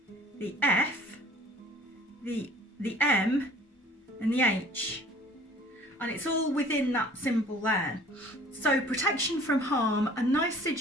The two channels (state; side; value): normal; both; correlation 0.50